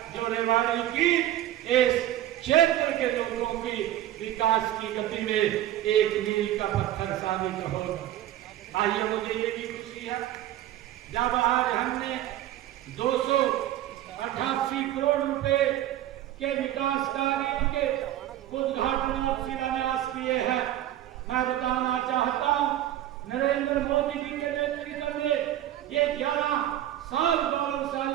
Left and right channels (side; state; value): left; quieter; 13.1 dB